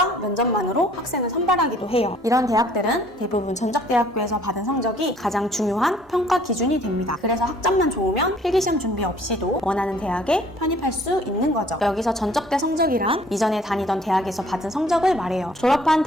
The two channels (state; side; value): normal; both; correlation 0.57